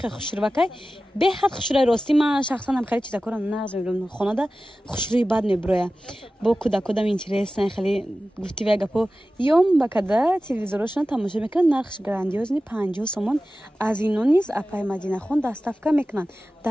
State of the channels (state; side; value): normal; both; correlation 0.95